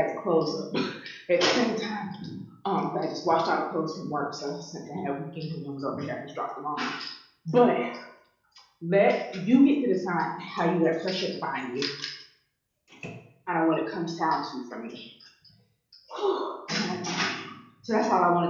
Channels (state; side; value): identical; both; correlation 1.00